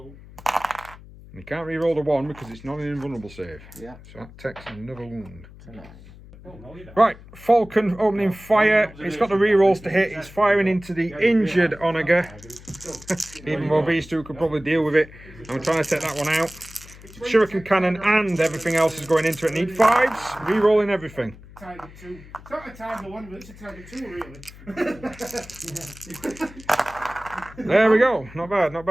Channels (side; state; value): left; noise; hum, 19 dB below the sound